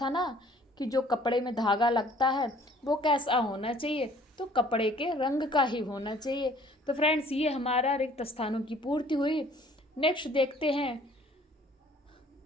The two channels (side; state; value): both; normal; correlation 0.56